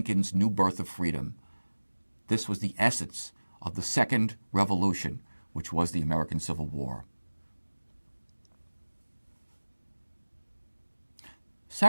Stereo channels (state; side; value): inverted; both; correlation -1.00